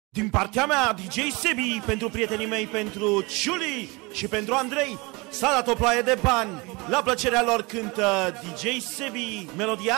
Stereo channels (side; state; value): left; quieter; 26.1 dB